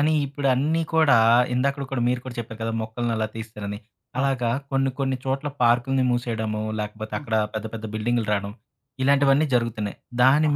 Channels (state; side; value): identical; both; correlation 1.00